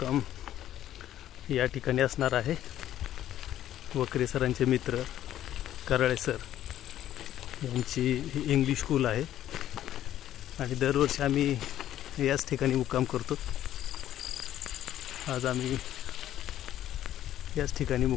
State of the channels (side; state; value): right; quieter; 12.1 dB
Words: या ठिकाणी असणार आहे. वकरे सरांचे मित्र कराळे सर यांची ही इंग्लिश स्कूल आहे आणि दरवर्षी आम्ही याच ठिकाणी मुक्काम करतो. आज आम्ही याच ठिकाणी